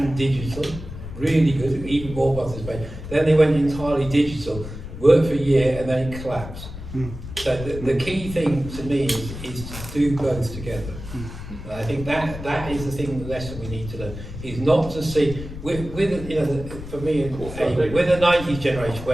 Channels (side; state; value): left; noise; rumble, 11 dB below the sound